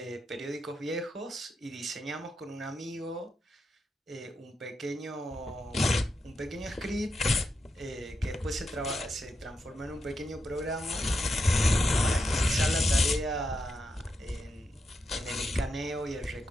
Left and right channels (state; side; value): normal; both; correlation 0.85